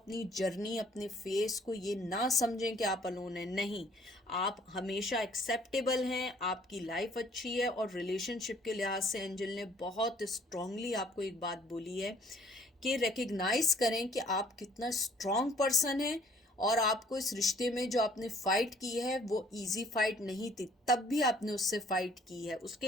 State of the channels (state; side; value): normal; both; correlation 0.59